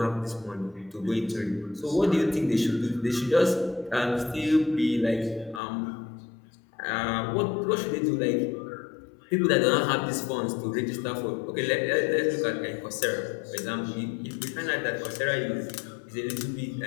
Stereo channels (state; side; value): drops out; right; at 5.6 s